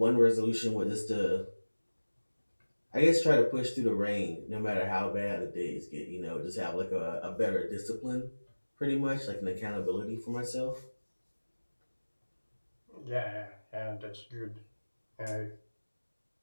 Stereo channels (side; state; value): both; inverted; correlation -1.00